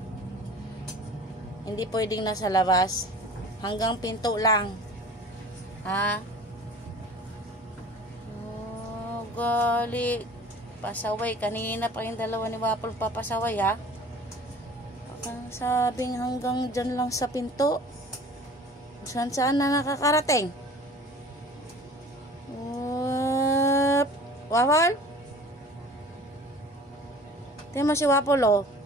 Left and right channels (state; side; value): normal; both; correlation 0.44